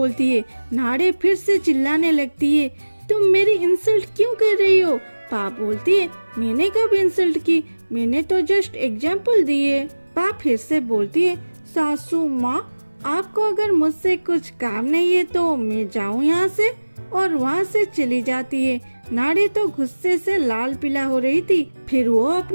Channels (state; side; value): inverted; both; correlation -1.00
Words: है। नाड़े फिर से चिल्लाने लगती है, तुम मेरी इंसल्ट क्यों कर रही हो। पा बोलती है, मैंने कब इंसल्ट की, मैंने तो जस्ट एग्जाम्पल दिए। पा फिर से बोलती है, सासू माँ आपको अगर मुझसे कुछ काम नहीं है तो मैं जाऊँ यहाँ से, और वहाँ से चली जाती है। नाड़े तो गुस्से से लाल पीला हो रही थी। फिर वो